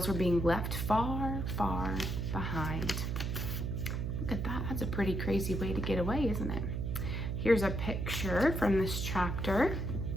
were being left far, far behind. Look at that. That's a pretty crazy way to get away, isn't it? Here's a picture from this chapter.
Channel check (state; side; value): noise; right; hum, 1 dB below the sound